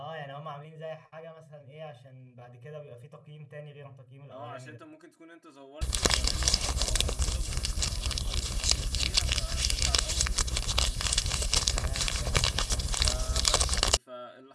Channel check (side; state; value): both; identical; correlation 1.00